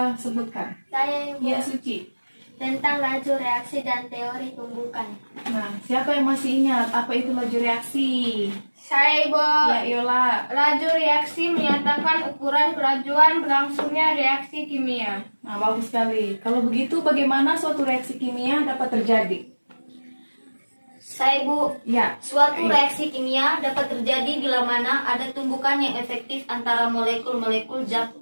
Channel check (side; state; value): both; inverted; correlation -1.00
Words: sebutkan? Saya, Ibu. Ya, Suci. Tentang laju reaksi dan teori tumbukan. Nah, siapa yang masih ingat apa itu laju reaksi? Saya, Ibu. Ya, Yola. Laju reaksi menyatakan ukuran kelajuan berlangsungnya reaksi kimia. Nah, bagus sekali. Kalau begitu, bagaimana suatu reaksi kimia dapat terjadi? Saya, Ibu. Ya, Suatu reaksi kimia dapat terjadi bila mana ada tumbukan yang efektif antara molekul-molekul zat